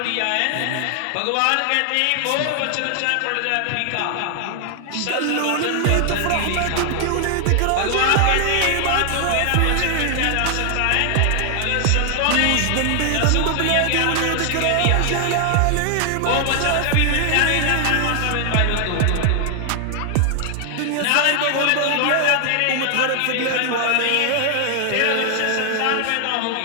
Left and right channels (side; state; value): both; different; correlation 0.00